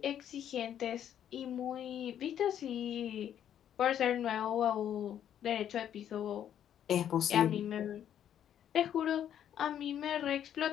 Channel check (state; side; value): quieter; right; 10.0 dB